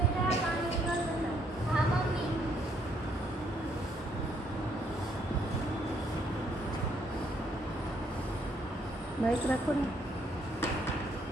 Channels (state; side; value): normal; both; correlation 0.69